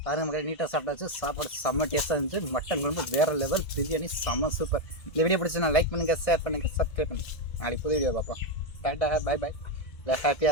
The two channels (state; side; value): late; right; 1.8 ms